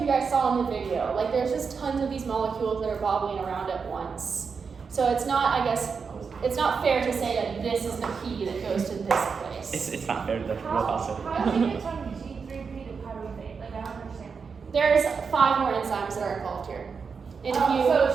guys saw in the video, like, there's just tons of these molecules that are bobbling around at once. So it's not, I guess, it's not fair to say that this is the P that goes to this place. It's not fair to the real phosphate. How do you get from G3P to pyruvate? Like, I don't understand. There's 5 more enzymes that are involved here. And if you, So it's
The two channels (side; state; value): left; quieter; 5.6 dB